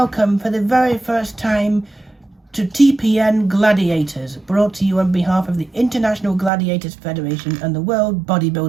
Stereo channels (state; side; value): drops out; left; at 6.5 s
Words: for the very first time to TPN Gladiators, brought to you on behalf of the International Gladiators Federation and the World